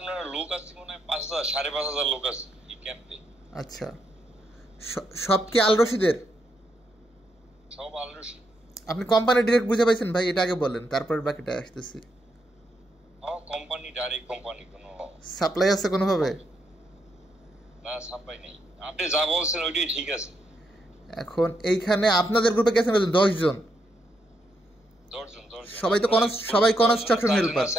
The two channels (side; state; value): both; normal; correlation 0.79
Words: লোক আছে মনে হয় 5,000 5,500 লোক আছে এই ক্যাম্পে। আচ্ছা, সব কি আল রশিদের? সব আল রশিদ। আপনি কোম্পানি ডিরেক্ট বুঝে পাইছেন ভাই? এটা আগে বলেন, তারপর বাকিটা আসতেছি। কোম্পানি ডাইরেক্ট, কোম্পানি কোনো সাপ্লাই আছে কোনোভাবে? না, সাপ্লাই নেই। আপনি যা বলছেন ওইটাই ঠিক আছে। এখন এইখানে আপনাদের গ্রুপে গেছেন 10 জন। 10 জন। সবাই তো সবাই কনস্ট্রাকশন হেল্পার।